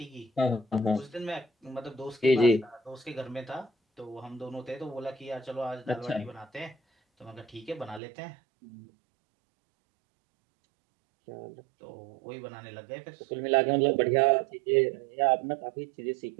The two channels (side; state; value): left; drops out; at 8.0 s